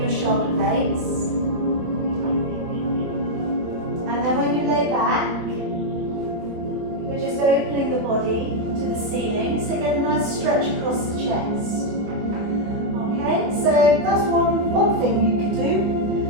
shoulder blades. And then when you lay back, we're just opening the body to the ceiling, so get a nice stretch across the chest. Okay, so that's one thing you can do.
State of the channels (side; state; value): left; late; 24 ms